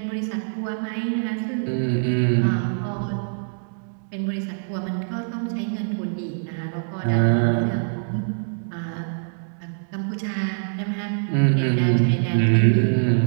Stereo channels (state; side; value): silent; left; digital silence